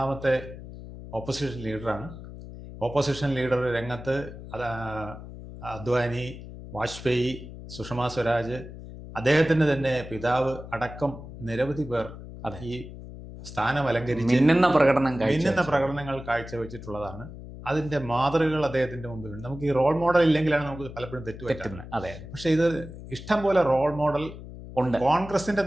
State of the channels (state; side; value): noise; left; hum, 13 dB below the sound